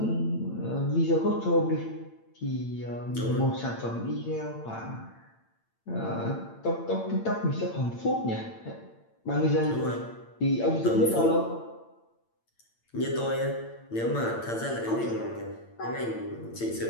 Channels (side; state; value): right; late; 8.8 ms